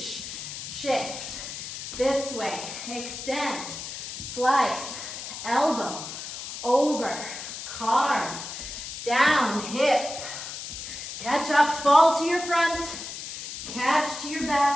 shift. This way. Extend, slice, elbow, over, carve, down, hip. Catch up, fall to your front, catch to your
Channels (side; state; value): left; noise; hiss, 8 dB below the sound